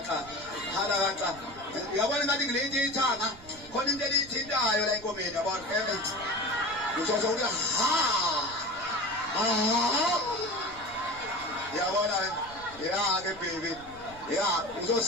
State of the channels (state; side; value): noise; right; rumble, 21 dB below the sound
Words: uyabona ngathi ngilethi ithanga khona into elithintayo la enkomeni yabona uzozo uthi yabona ke baby